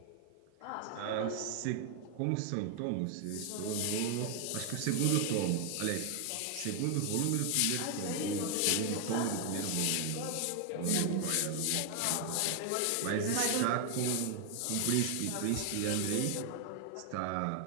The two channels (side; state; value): both; different; correlation 0.00